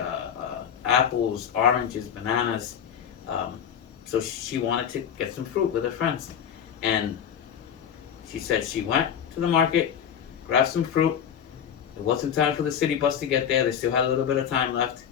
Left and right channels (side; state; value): right; quieter; 8.6 dB